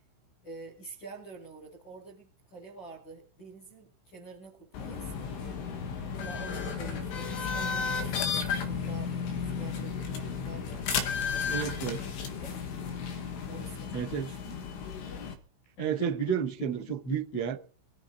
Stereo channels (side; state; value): right; late; 16 ms